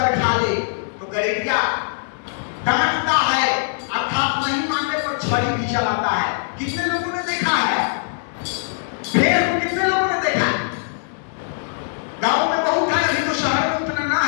खा ले, तो गलीलिया डांटता है, अर्थात नहीं मानने पर छड़ी भी चलाता है। कितने लोगों ने देखा है भेड़ को? कितने लोगों ने देखा? गांव में बहुत है, अभी तो शहर में उतना ना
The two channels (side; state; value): right; silent; digital silence